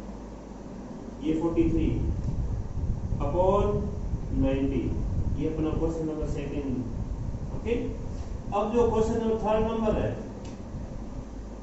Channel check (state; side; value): identical; both; correlation 1.00